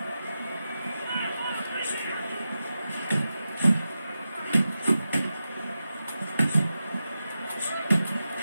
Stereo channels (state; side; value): inverted; both; correlation -0.91